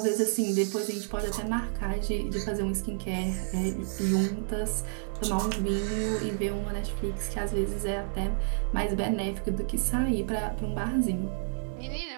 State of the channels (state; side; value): silent; left; 58 dB below the other